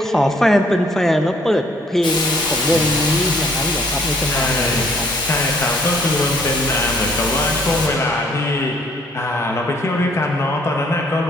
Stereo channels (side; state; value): both; normal; correlation 0.63